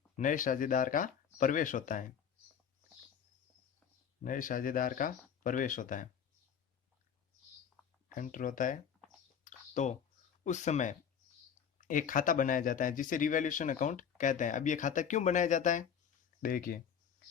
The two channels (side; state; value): right; quieter; 7.9 dB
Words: नए साझेदार का प्रवेश होता है, नए साझेदार का प्रवेश होता है, एंटर होता है, तो उस समय एक खाता बनाया जाता है जिसे रिवैल्यूएशन अकाउंट कहते हैं। अब ये खाता क्यों बनाया जाता है? देखिए,